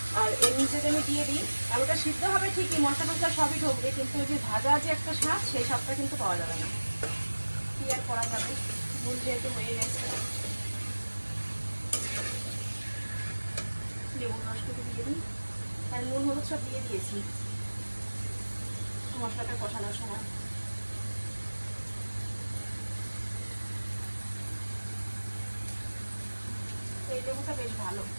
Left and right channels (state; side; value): inverted; both; correlation -1.00